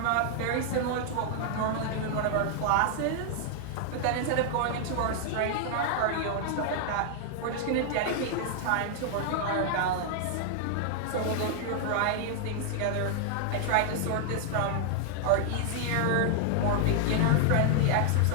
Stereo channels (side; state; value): both; different; correlation -0.01